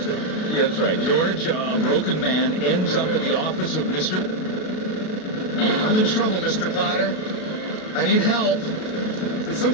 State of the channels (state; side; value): late; right; 33 ms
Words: Yeah, that's right. George, a broken man, ends up at the office of Mr. I'm in trouble, Mr. Potter. I need help. There's some